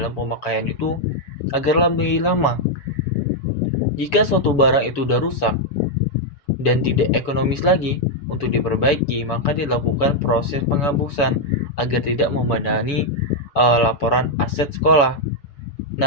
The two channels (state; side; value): late; right; 7.0 ms